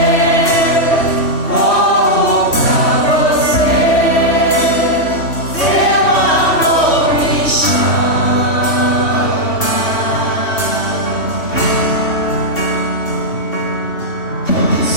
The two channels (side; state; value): right; late; 3.1 ms